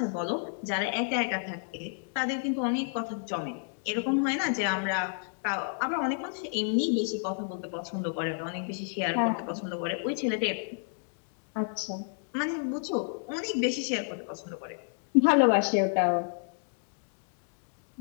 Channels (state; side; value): silent; right; 55 dB below the other